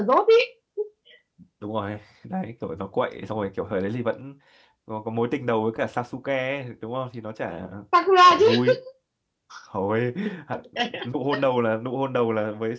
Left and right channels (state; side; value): identical; both; correlation 1.00